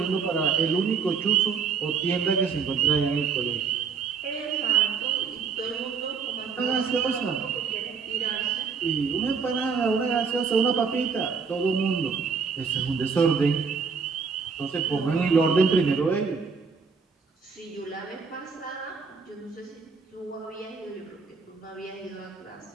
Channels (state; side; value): quieter; left; 5.6 dB